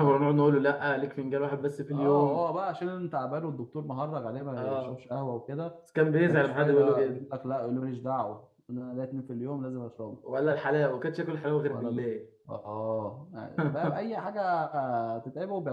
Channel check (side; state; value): both; identical; correlation 1.00